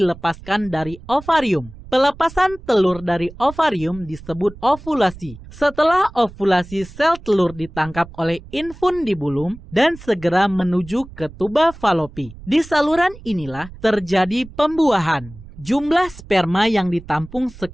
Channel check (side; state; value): right; noise; rumble, 18 dB below the sound